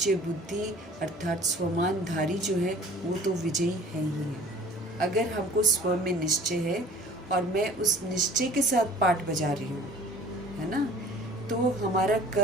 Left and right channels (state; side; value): normal; both; correlation 0.48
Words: बुद्धि अर्थात स्वमानधारी जो है वो तो विजयी है ही है। अगर हमको स्व में निश्चय है और मैं उस निश्चय के साथ पाठ बजा रही हूँ, है ना, तो हमारा